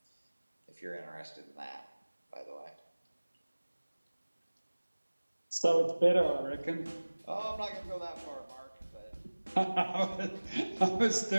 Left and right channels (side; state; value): both; inverted; correlation -1.00